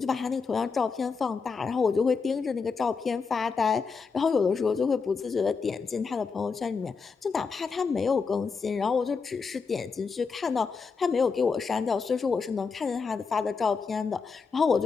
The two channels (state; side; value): quieter; right; 5.1 dB